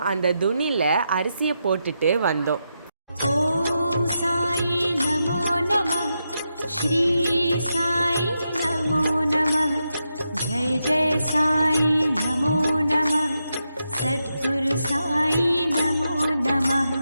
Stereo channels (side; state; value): both; inverted; correlation -0.86